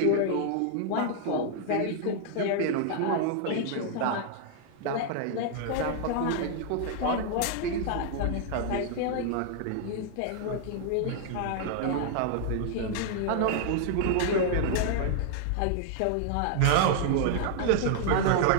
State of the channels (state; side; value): different; both; correlation -0.01